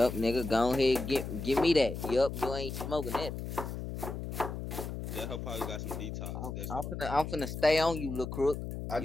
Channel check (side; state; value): left; noise; hum, 6 dB below the sound